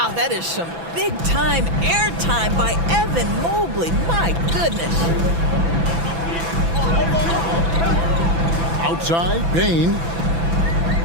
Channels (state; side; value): late; left; 6.0 ms